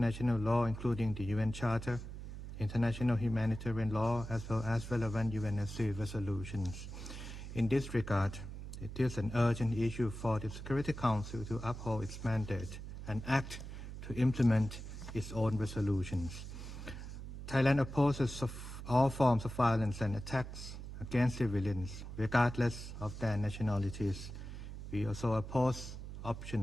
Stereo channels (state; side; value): noise; right; hum, 9 dB below the sound